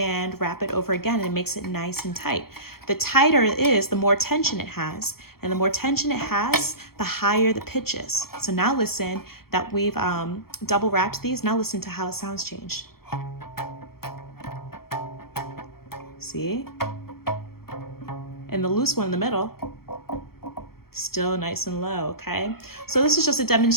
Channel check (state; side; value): late; right; 0.94 ms